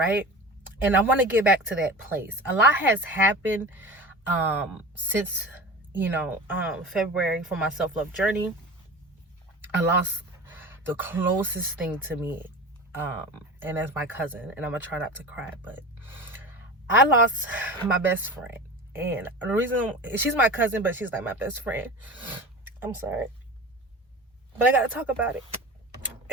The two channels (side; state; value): both; normal; correlation 0.33